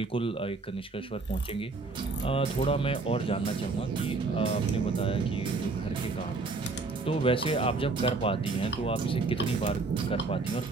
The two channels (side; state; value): left; quieter; 3.7 dB